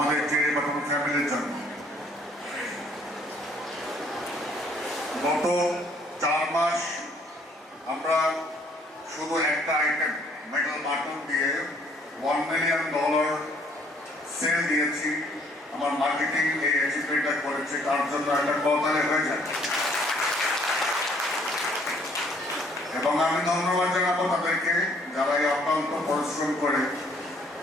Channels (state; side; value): normal; both; correlation 0.62